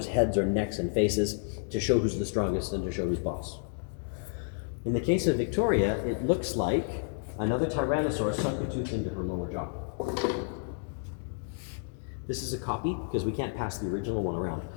heads or necks and faces to show who's the strongest and to show who's boss. In the case of Victoria, it looks like another tyrannosaur sunk a tooth into her lower jaw. This is a copy because we can't pass the original one around.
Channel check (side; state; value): right; silent; digital silence